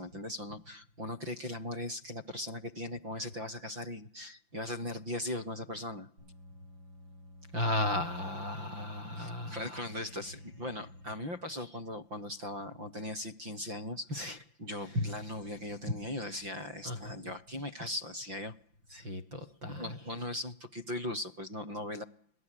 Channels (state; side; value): late; left; 5.8 ms